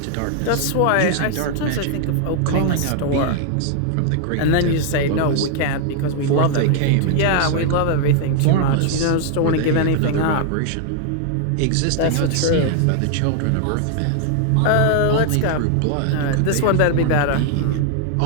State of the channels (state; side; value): different; both; correlation 0.00